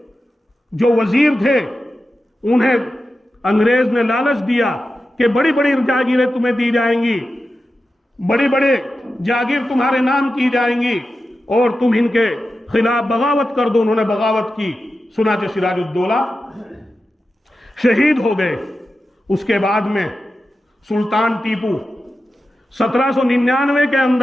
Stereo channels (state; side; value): normal; both; correlation 0.91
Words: جو وزیر تھے انہیں انگریز نے لالچ دیا کہ بڑی بڑی جاگیریں تمہیں دی جائیں گی، بڑی بڑے جاگیر تمہارے نام کی جائیں گی اور تم ان کے خلاف بغاوت کر دو۔ انہوں نے بغاوت کی، چنانچہ سراج الدولہ شہید ہو گئے۔ اس کے بعد میں سلطان ٹیپو 1799 کے